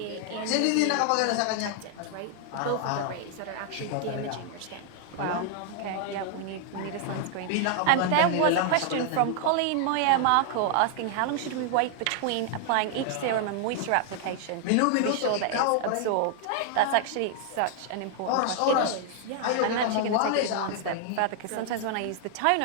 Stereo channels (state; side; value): different; both; correlation 0.00